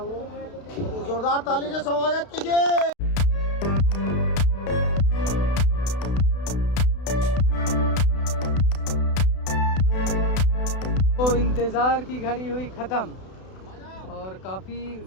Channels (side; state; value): right; late; 32 ms